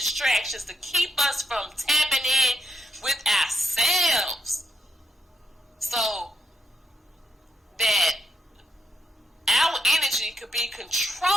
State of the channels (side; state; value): both; normal; correlation 0.82